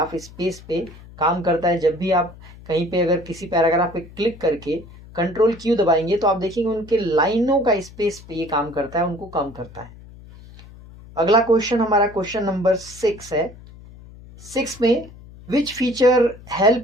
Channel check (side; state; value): left; noise; hum, 19 dB below the sound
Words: space पे काम करता है। जब भी आप कहीं पे अगर किसी पैराग्राफ पे क्लिक करके कंट्रोल क्यू दबाएंगे तो आप देखेंगे उनके लाइनों का स्पेस पे ये काम करता है, उनको कम करता है। अगला क्वेश्चन हमारा क्वेश्चन नंबर 6 है। 6 में which feature